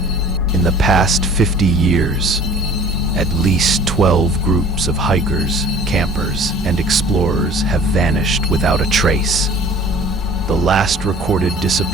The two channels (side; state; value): both; normal; correlation 0.48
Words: In the past 50 years, at least 12 groups of hikers, campers, and explorers have vanished without a trace. The last recorded